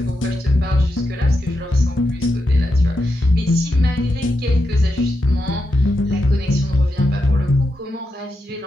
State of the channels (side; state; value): both; normal; correlation 0.86